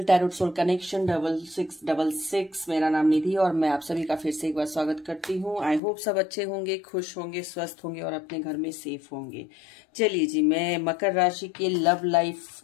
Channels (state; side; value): drops out; right; at 5.8 s